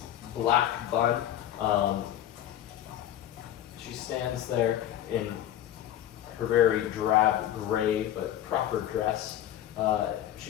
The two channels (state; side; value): quieter; right; 11.8 dB